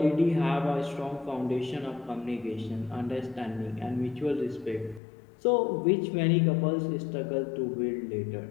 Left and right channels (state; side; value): drops out; right; at 5.0 s